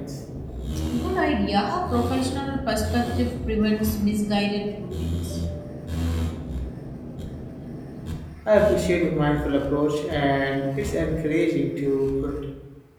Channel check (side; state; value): both; identical; correlation 1.00